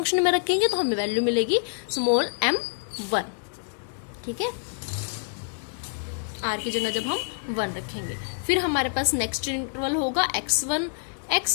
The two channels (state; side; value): silent; right; digital silence